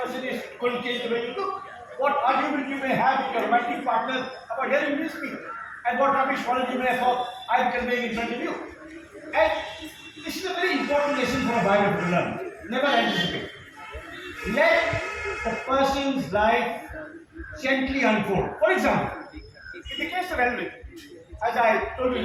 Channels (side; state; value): both; identical; correlation 1.00